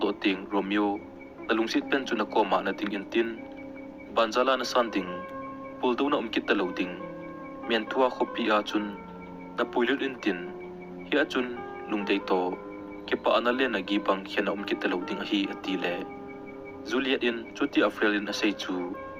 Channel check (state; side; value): identical; both; correlation 1.00